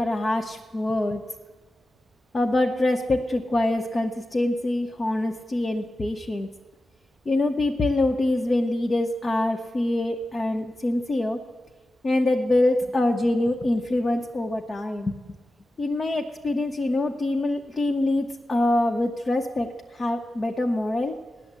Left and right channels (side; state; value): both; normal; correlation 0.93